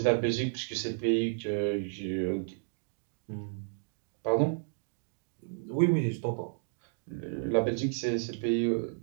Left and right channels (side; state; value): left; silent; digital silence